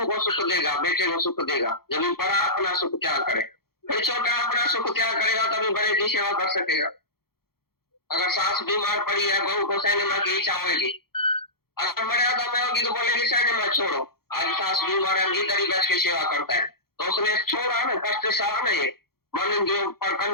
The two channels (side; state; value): right; late; 0.94 ms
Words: को सुख देगा, बेटे को सुख देगा। जब बड़ा अपना सुख त्याग करे, फिर छोटा अपना सुख त्याग करेगा तभी बड़े की सेवा कर सकेगा। अगर सास बीमार पड़ी है, बहू को सिनेमा की इच्छा होगी, अगर मर्यादा में होगी तो बोलेगी सिनेमा छोड़ो, आज सास बीमार है, इधर ही बैठ के सेवा करता है, तो उसने छोड़ा ना, कष्ट सहा ना, ये मन इंद्रियों पर